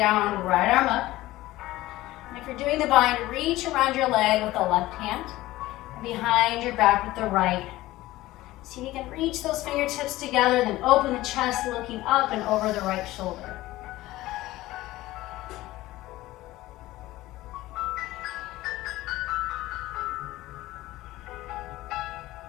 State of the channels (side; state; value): right; quieter; 17.2 dB